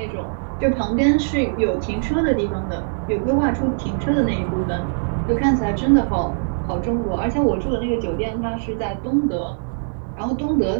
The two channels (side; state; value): left; silent; digital silence